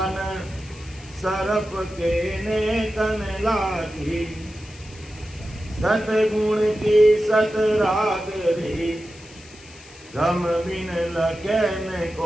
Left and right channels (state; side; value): noise; left; hiss, 21 dB below the sound